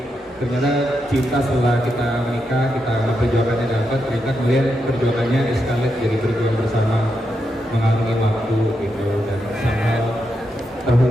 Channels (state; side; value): normal; both; correlation 0.84